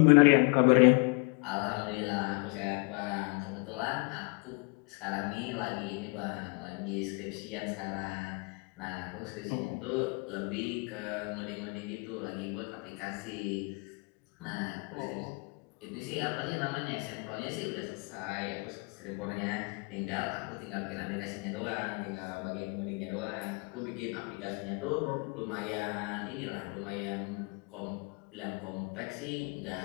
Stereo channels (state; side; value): quieter; right; 32.0 dB